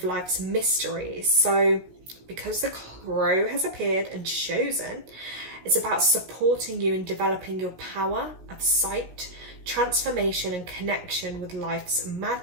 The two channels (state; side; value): late; left; 17 ms